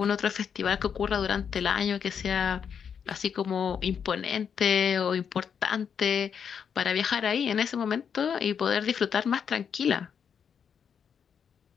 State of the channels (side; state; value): right; quieter; 7.3 dB